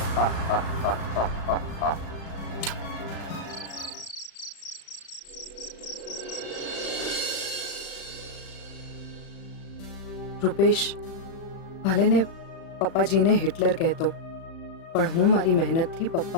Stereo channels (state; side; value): late; right; 36 ms